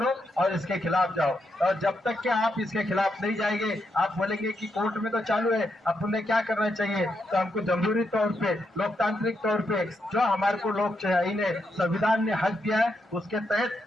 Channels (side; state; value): both; normal; correlation 0.81